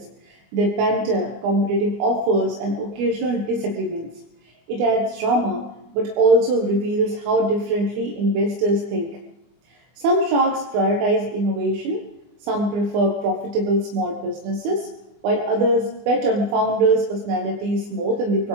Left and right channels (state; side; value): late; left; 24 ms